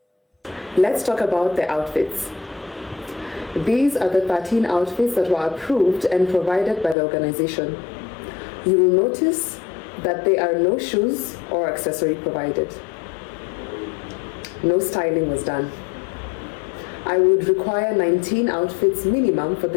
Let's talk about the outfits. These are the 13 outfits that were approved and provided by the organization. You will notice that there are no shoes or accessory provided. No styling was done. I would require 19 outfits minimum for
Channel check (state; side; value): drops out; right; at 7.0 s